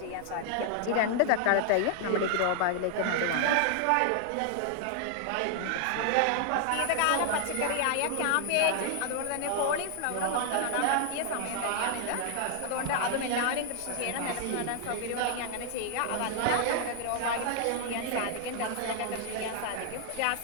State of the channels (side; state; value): both; different; correlation 0.00